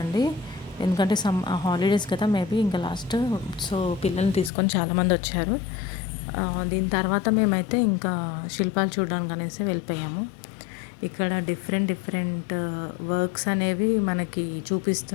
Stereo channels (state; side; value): drops out; right; at 4.5 s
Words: ఎందుకంటే హాలిడేస్ కదా, మేబీ ఇంకా లాస్ట్. సో పిల్లల్ని తీసుకొని చాలామంది వచ్చారు. దీని తర్వాత మేమైతే ఇంకా శిల్పాలు చూడడానికి అనేసి వెళ్ళిపోయాము. ఇక్కడ డిఫరెంట్ డిఫరెంట్ వర్క్స్ అనేవి మనకి